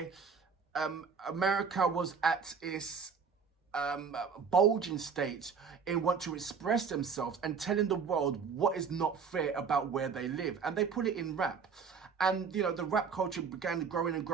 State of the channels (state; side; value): quieter; left; 5.9 dB